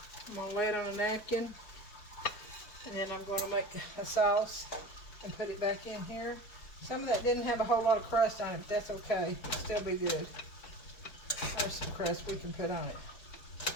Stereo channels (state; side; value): late; right; 4.6 ms